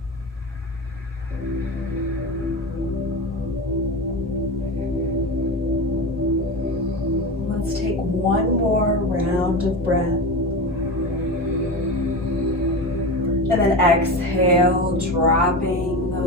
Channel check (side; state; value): both; normal; correlation 0.23